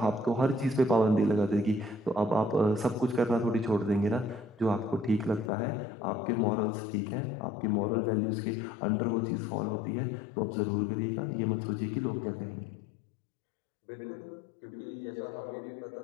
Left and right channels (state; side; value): drops out; right; at 5.5 s